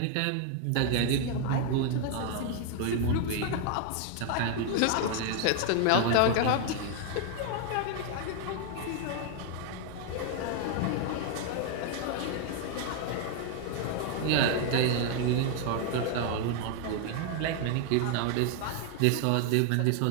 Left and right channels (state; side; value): different; both; correlation 0.00